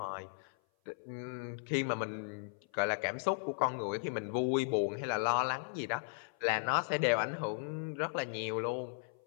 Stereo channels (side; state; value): right; silent; 54 dB below the other